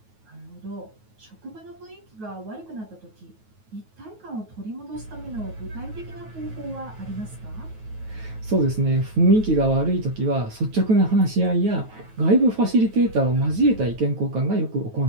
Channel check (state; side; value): late; left; 9.3 ms